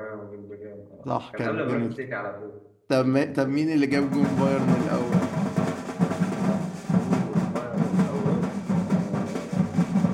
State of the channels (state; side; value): identical; both; correlation 1.00